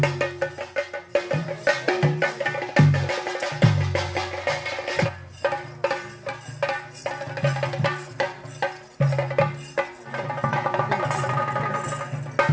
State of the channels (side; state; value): both; identical; correlation 1.00